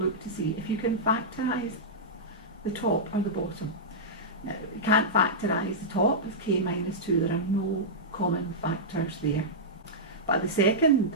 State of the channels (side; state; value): both; normal; correlation -0.12